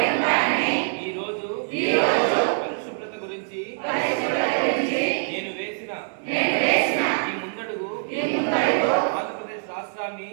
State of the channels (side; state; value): left; silent; 61 dB below the other